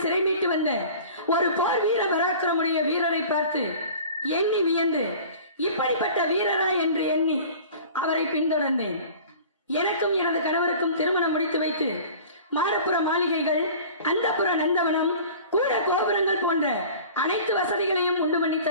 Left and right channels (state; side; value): inverted; both; correlation -0.42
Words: சிறை மீட்டு வந்த ஒரு போர் வீர பராக்கிரமுடைய வீரரை பார்த்து எண்ணி வியந்து இப்படிப்பட்ட வீரரா என்று எண்ணி அவரை பின்தொடர்ந்தேன். எனக்கும் எனது கணவருக்கும் திருமணம் முடித்து வைத்து மாடப்புற மாளிகைகள், அந்தப்புற நந்தவனம், கூட கோபுரங்கள் போன்ற அனைத்து வசதிகளையும் உண்டு பண்ணி